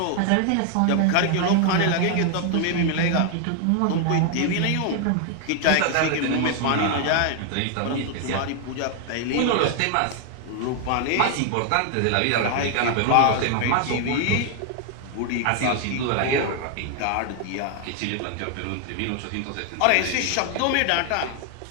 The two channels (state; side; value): different; both; correlation 0.00